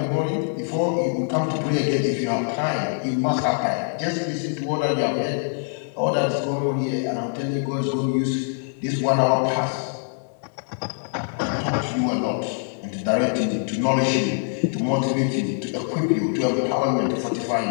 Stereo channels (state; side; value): silent; right; 63 dB below the other